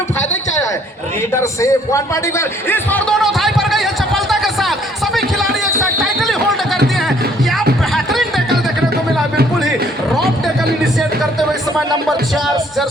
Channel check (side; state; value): both; normal; correlation 0.62